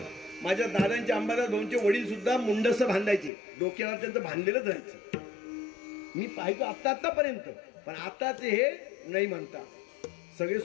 माझ्या दादांचे अंबादास भाऊंचे वडील सुद्धा मुंडस बांधायचे, डोक्यावर त्यांचं बांधलेलंच राहायचं. मी पाहितो आतापर्यंत, पण आताचे हे नाही म्हणता, सगळे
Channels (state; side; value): drops out; right; at 3.3 s